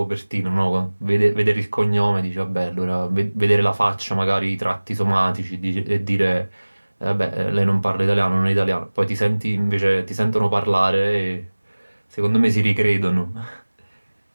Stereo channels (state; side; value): inverted; both; correlation -1.00